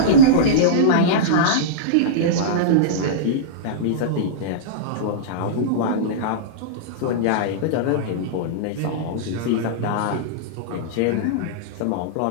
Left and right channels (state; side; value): different; both; correlation -0.04